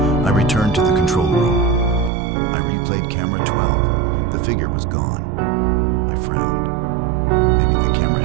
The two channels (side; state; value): left; drops out; at 2.1 s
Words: returned to the control room. I replayed camera 12. The figure was gone. I frowned. Maybe the camera